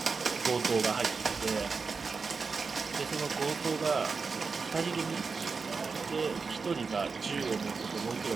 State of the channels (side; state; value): left; quieter; 4.8 dB